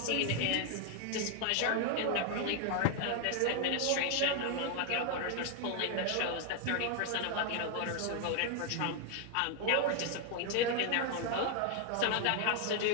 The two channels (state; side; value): different; both; correlation 0.00